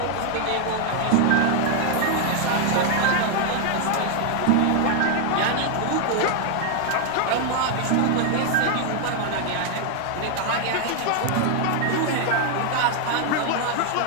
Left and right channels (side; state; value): both; different; correlation 0.00